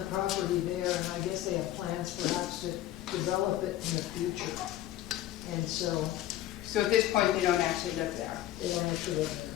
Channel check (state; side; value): quieter; right; 13.7 dB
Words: property there, and I guess they have plans perhaps to develop it in the future. And so... So at this point, they don't actually live there? They don't actually live